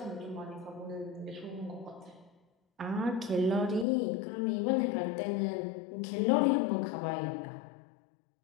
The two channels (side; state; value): right; drops out; at 3.9 s